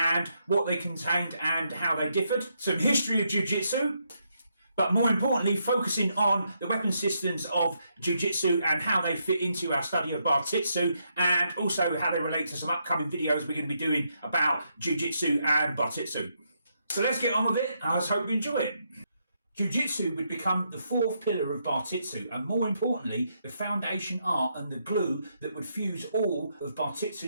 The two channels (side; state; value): both; inverted; correlation -0.78